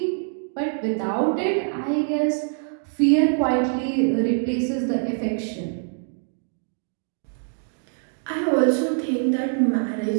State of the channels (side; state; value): left; silent; digital silence